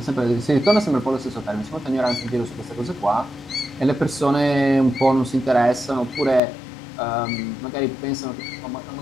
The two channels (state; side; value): drops out; right; at 6.4 s